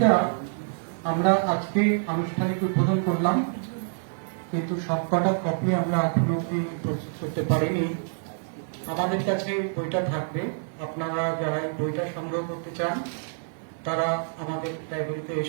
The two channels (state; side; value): silent; left; digital silence